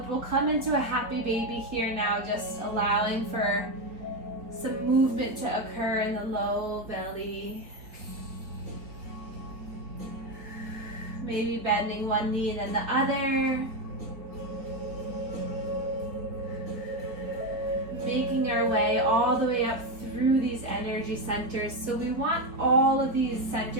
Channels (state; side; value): late; left; 4.0 ms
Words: we'll come into a happy baby here now, just allowing for some movement to occur in the low belly. Maybe bending one knee and then the other. Making our way all the way up through these energy centers. So we want all of these